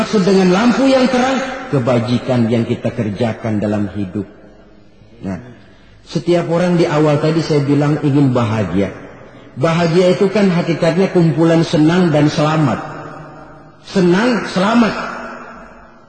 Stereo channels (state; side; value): identical; both; correlation 1.00